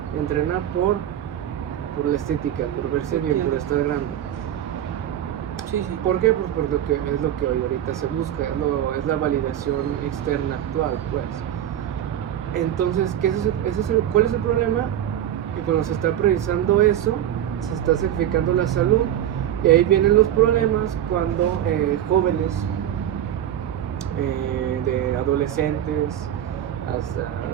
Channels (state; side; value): quieter; left; 11.0 dB